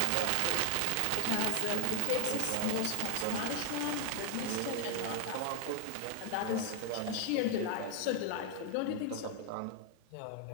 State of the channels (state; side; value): different; both; correlation 0.01